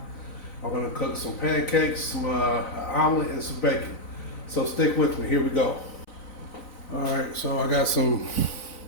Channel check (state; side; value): late; right; 4.0 ms